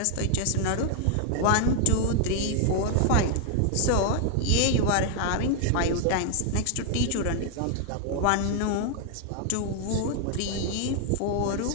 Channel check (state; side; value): different; both; correlation 0.00